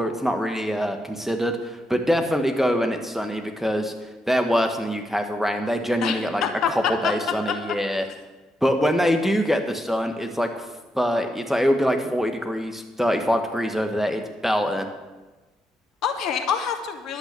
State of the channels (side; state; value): both; normal; correlation 0.82